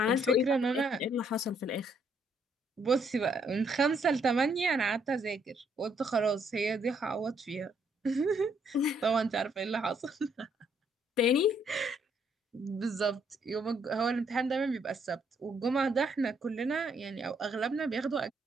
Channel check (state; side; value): normal; both; correlation 0.70